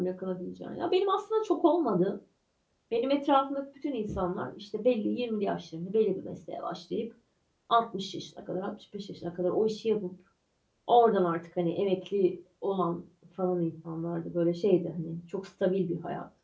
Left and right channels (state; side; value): identical; both; correlation 1.00